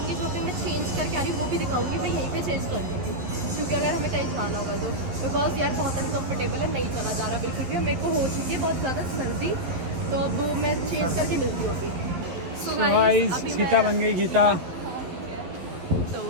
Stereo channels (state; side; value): late; left; 11 ms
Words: जो कि मैं चेंज करके आ रही हूँ, वो भी दिखाऊंगी। मैं यहीं पे चेंज कर दूँगी क्योंकि अगर हमें कहीं जाना होगा तो, बिकॉज यार बहुत अनकम्फर्टेबल है, नहीं चला जा रहा बिल्कुल भी। मेरे को हो चुकी है बहुत ज़्यादा सर्दी, तो अब मैं चेंज करके मिलती हूँ अभी। सो गाइस अभी गीता बन गई गीता। तो